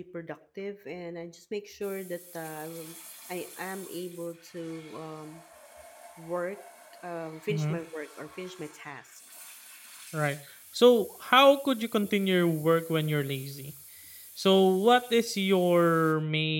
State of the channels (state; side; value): identical; both; correlation 1.00